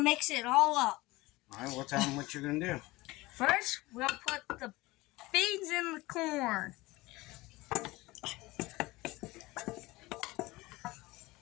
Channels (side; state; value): right; quieter; 20.5 dB